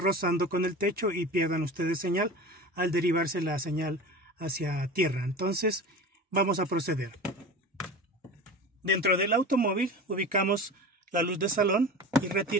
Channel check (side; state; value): both; normal; correlation 0.33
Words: con el techo y pierdan ustedes señal al derivarse la señal hacia tierra. Entonces vamos a proceder. Dentro del automóvil ubicamos la luz de salón y